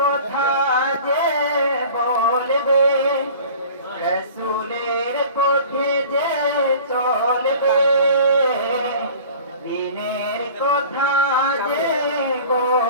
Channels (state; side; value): inverted; both; correlation -0.44